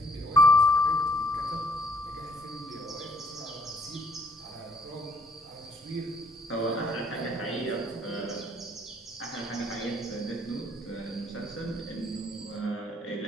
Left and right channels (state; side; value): normal; both; correlation 0.65